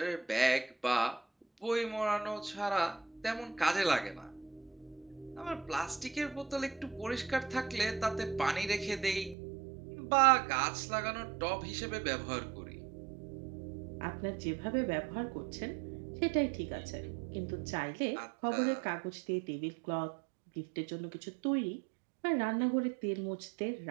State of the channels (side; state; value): left; drops out; at 9.3 s